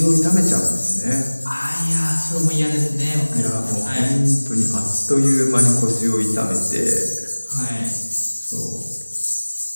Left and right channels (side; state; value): both; inverted; correlation -1.00